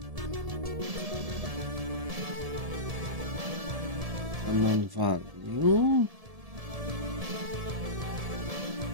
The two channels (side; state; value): left; late; 1.7 ms